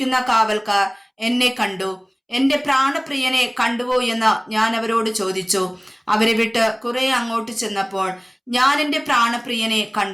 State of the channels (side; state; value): both; identical; correlation 1.00